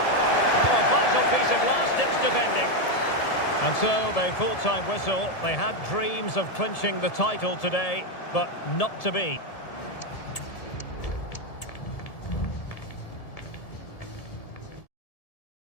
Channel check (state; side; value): late; right; 1.7 ms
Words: Oh, a vital piece of last-ditch defending. And so, the full-time whistle. They had dreams of clinching the title today, but not to be.